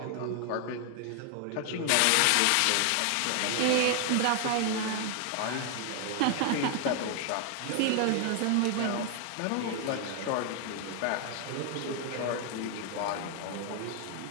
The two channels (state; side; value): different; both; correlation 0.00